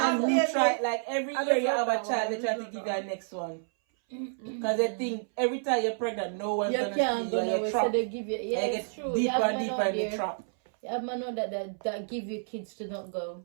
who baby. try, like every I year you just have love a that child, one. they try I to just give love you a next one? Because they think every time you're pregnant, no one's You gonna can't see go you and nowhere, you're so trapped. they give you. Yeah, And you it's get true. You deeper have and man deeper out in the there. trap. You have man out that give you kids to not go.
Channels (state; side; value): silent; left; 58 dB below the other